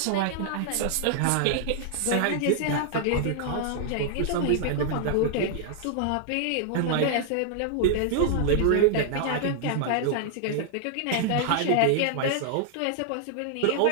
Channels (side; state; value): both; different; correlation -0.01